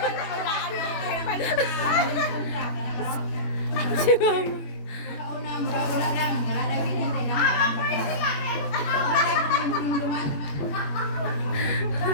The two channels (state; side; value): late; right; 21 ms